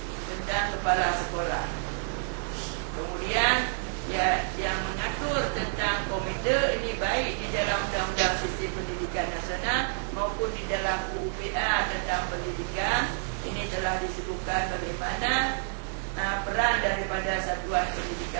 tentang kepala sekolah. Kemudian ya, yang mengatur tentang komite ini baik di dalam Undang-Undang Sistem Pendidikan Nasional maupun di dalam UUPA tentang pendidikan. Ini telah disebutkan bagaimana peran daripada satuan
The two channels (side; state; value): left; silent; 59 dB below the other